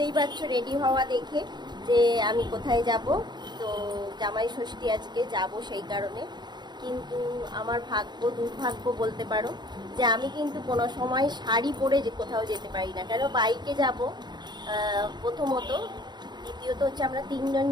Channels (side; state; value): left; late; 0.21 ms